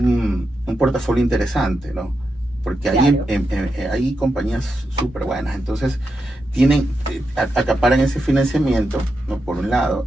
portafolio interesante, ¿no? Porque claro, hay compañías súper buenas, entonces acaparan ese financiamiento, ¿no? Por un lado,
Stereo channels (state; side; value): normal; both; correlation 0.86